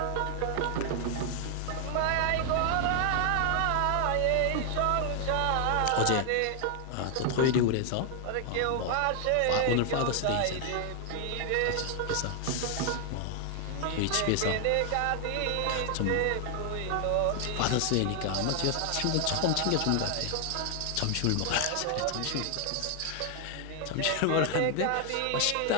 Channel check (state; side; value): different; both; correlation 0.00